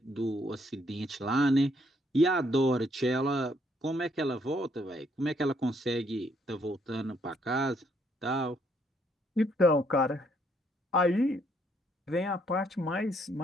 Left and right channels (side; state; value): both; normal; correlation 0.70